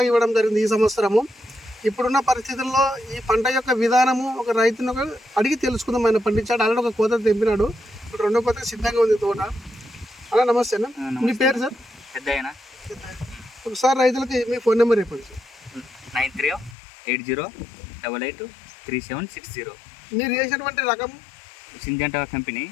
ఇవ్వడం జరిగింది ఈ సంవత్సరము. ఇప్పుడున్న పరిస్థితుల్లో ఈ పంట యొక్క విధానము ఒక రైతును అడిగి తెలుసుకుందాం. ఆయన పండించాడు, ఆల్రెడీ ఒక కోత తెంపినాడు. ఇప్పుడు రెండో కోత సిద్ధంగా ఉంది తోట. అలా నమస్తే అన్న. మీ పేరు సార్? పెద్దయినా. ఒకసారి రైతులకి మీ ఫోన్ నెంబర్ చెప్పండి సార్. 9380883760. మీరు చేసినటువంటి రకం సింజంటా కంపెనీ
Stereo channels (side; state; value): right; drops out; at 16.8 s